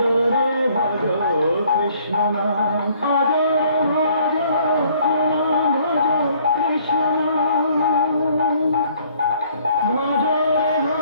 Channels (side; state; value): both; inverted; correlation -0.61